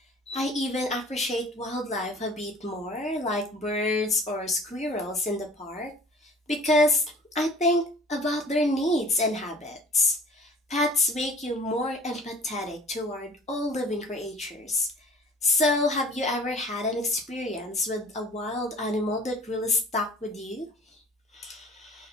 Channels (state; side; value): normal; both; correlation 0.48